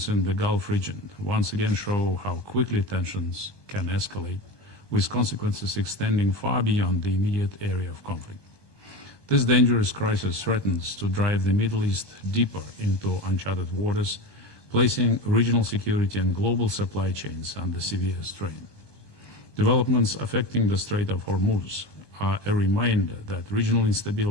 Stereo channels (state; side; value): late; right; 1.2 ms